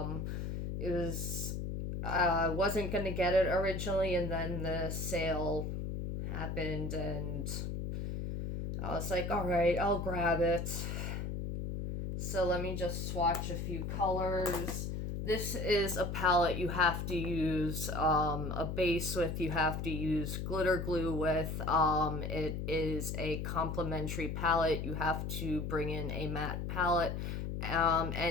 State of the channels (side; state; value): left; noise; hum, 3 dB below the sound